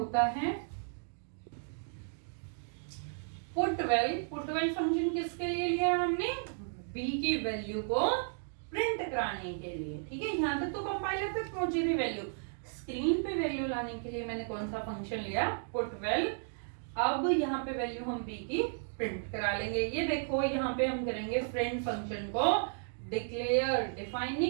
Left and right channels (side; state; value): left; silent; digital silence